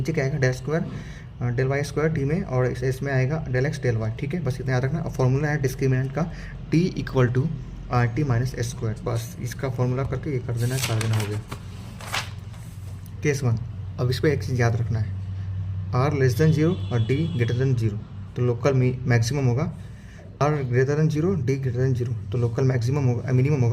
क्या आएगा, del square del Y square T में, और इस में आएगा डेल एक्स डेल वाई। ठीक है, बस इतना याद रखना। और फॉर्मूला है डिस्क्रिमिनेंट का, T equal to R T minus S square. बस इसका फॉर्मूला करके ये कर देना हो गया। केस वन, अब इस पर एक चीज़ याद रखना है, आर लेस देन जीरो और डी ग्रेटर देन जीरो, तो लोकल मैक्सिमम होगा। R greater than zero, D greater than zero, तो लोकल मैक्सिमम होगा, मिनिमम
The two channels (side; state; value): both; identical; correlation 1.00